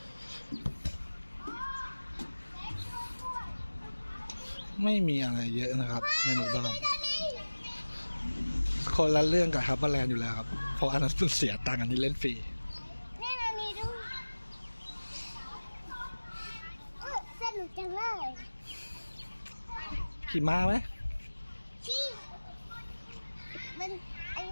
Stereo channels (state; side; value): inverted; both; correlation -1.00